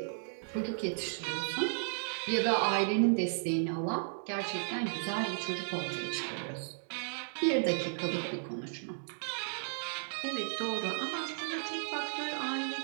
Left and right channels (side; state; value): left; silent; digital silence